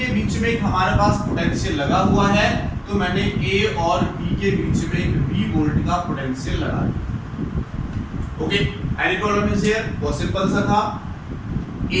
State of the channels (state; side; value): identical; both; correlation 1.00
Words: बीच में एक हमारे पास पोटेंशियल लगा हुआ है, तो मैंने ए और बी के बीच में एक V वोल्ट का पोटेंशियल लगा दिया। Okay, any problem is here, बहुत सिंपल सा था।